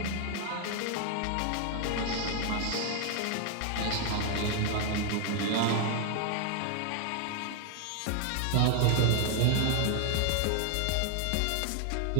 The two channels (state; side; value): different; both; correlation 0.00